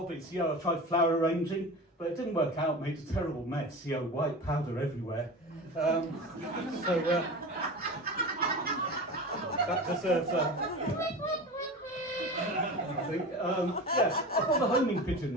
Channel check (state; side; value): normal; both; correlation 0.30